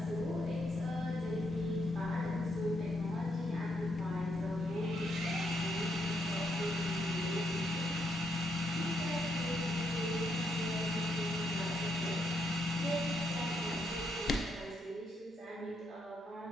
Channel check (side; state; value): both; normal; correlation 0.77